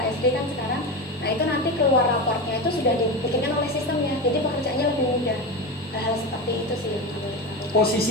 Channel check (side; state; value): both; normal; correlation 0.21